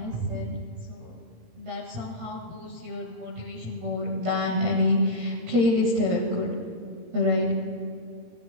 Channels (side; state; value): left; late; 17 ms